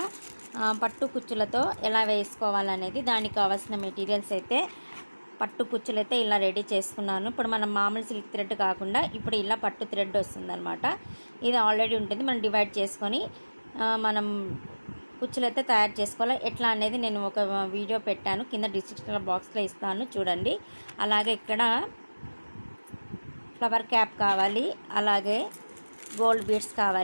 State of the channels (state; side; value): inverted; both; correlation -1.00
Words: పట్టు కుచ్చులతో ఎలా వేసుకోవాలనేది, దానికి కావాల్సిన మెటీరియల్స్ అయితే పట్టు కుచ్చులు అయితే ఇలా రెడీ చేసుకున్నాను. ఇప్పుడు మనం మామూలు సిల్క్ థ్రెడ్ కాకుండా ఇప్పుడు ఇలా పట్టు థ్రెడ్ వస్తుందన్నమాట. ఇది ఆల్రెడీ ఉంటుంది, మనం డివైడ్ చేసుకొని మనం కుచ్చులు అయితే తయారు చేసుకోవాలి. ఎట్లా అనేది నేను ఒక వీడియో పెట్టాను, కింద డిస్క్రిప్షన్ బాక్స్లో ఇస్తాను చూడండి. అలాగే ఇక్కడ ఫ్లవర్ క్యాప్ కావాలి, అలాగే గోల్డ్ బీడ్స్